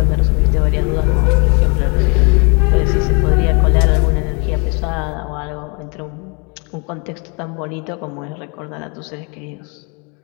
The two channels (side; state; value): right; quieter; 33.1 dB